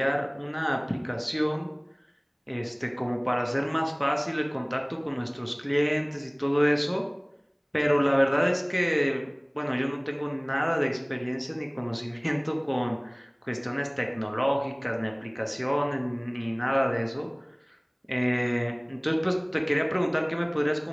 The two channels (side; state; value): both; identical; correlation 1.00